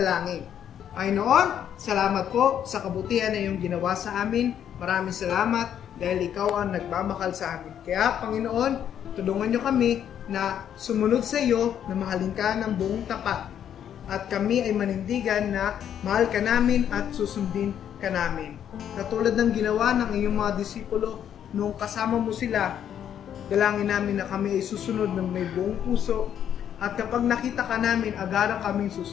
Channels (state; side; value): quieter; right; 9.5 dB